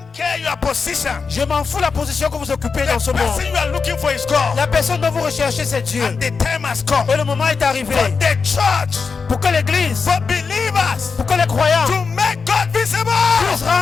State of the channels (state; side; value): quieter; right; 5.1 dB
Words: care your position. Je m'en fous la position que vous occupez dans ce The monde. person you are looking for is God. La personne dont vous recherchez, c'est Dieu. And the time has come Et le moment est arrivé for the church, pour que l'Église, for believers, pour que les croyants to make God visible, puissent